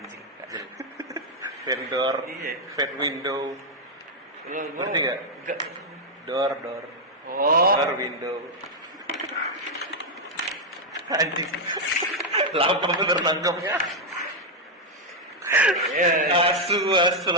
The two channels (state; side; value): normal; both; correlation 0.00